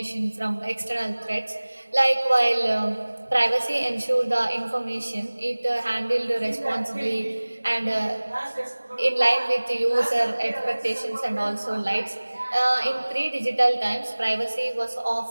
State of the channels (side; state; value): both; inverted; correlation -1.00